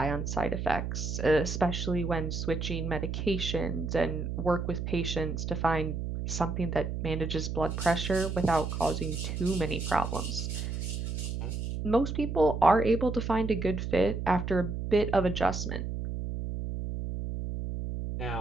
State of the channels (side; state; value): right; noise; hum, 4 dB below the sound